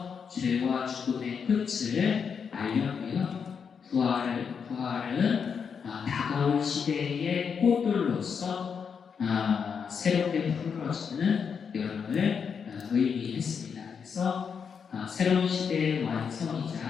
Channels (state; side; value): quieter; right; 6.5 dB